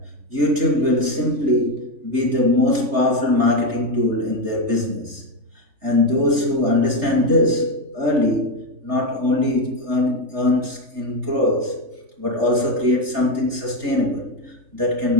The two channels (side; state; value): left; late; 3.3 ms